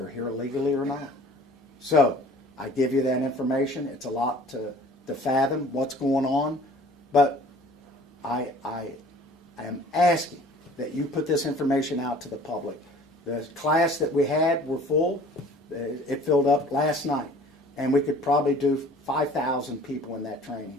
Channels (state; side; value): normal; both; correlation 0.50